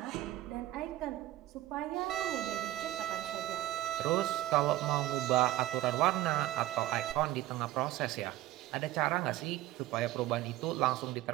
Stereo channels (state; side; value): quieter; left; 15.3 dB